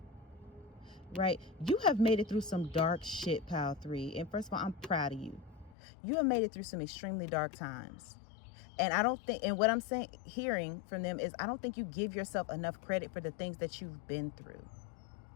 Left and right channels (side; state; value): right; drops out; at 5.8 s